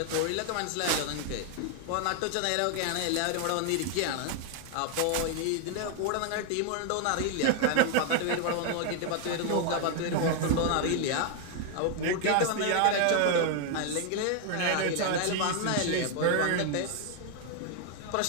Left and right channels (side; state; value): both; different; correlation 0.00